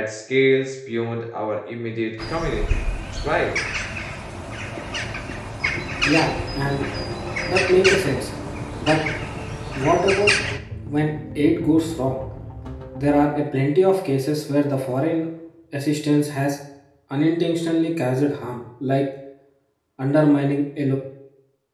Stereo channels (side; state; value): both; identical; correlation 1.00